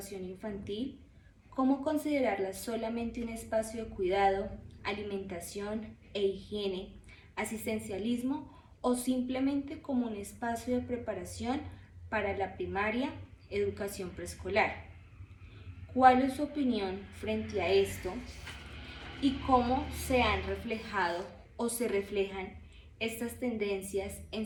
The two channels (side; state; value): both; identical; correlation 1.00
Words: infantil, como considerarla solamente un espacio de cuidado, alimentación e higiene, asistencialismo o simplemente como un espacio de preparación para la primaria, educación preescolar. ¿Cuál es su opinión frente a esto y cómo se han reflejado o se reflejan estas tendencias en